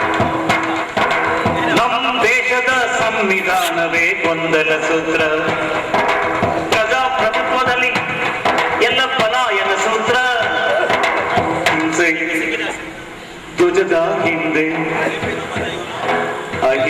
ನಮ್ಮ ದೇಶದ ಸಂವಿಧಾನವೇ ಗೊಂದಲ ಸೂತ್ರ. ಪ್ರಜಾಪ್ರಭುತ್ವದಲ್ಲಿ ಎಲ್ಲ ಪಲಾಯನ ಸೂತ್ರ. ಹಿಂಸೆ ಧ್ವಜದ ಹಿಂದೆ,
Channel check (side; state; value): both; identical; correlation 1.00